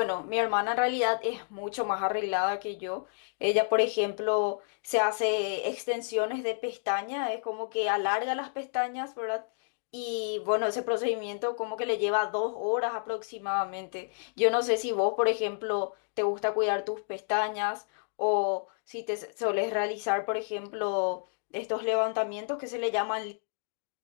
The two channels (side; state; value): right; silent; digital silence